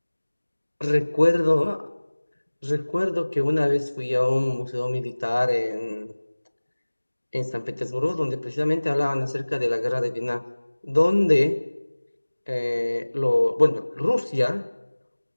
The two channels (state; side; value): inverted; both; correlation -1.00